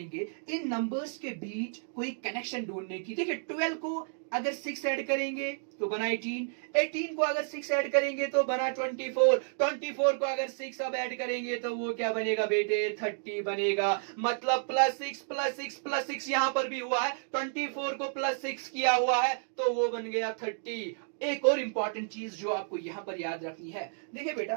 इन नंबर्स के बीच कोई कनेक्शन ढूंढने की। देखिए, 12 को अगर 6 ऐड करेंगे तो बना 18, 18 को अगर 6 ऐड करेंगे तो बना 24, 24 को अगर 6 अब ऐड करेंगे तो वो क्या बनेगा बेटे, 30 बनेगा। मतलब +6 +6 +6 यहां पर भी हुआ है, 24 को +6 किया हुआ है तो वो बन गया 30। एक और इंपॉर्टेंट चीज जो आपको यहां पर याद रखनी है, देखिए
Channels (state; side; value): silent; left; digital silence